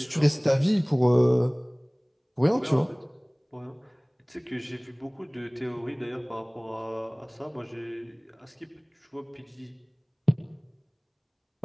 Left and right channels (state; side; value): identical; both; correlation 1.00